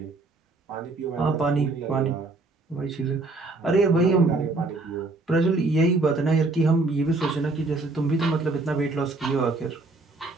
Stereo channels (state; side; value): quieter; left; 3.3 dB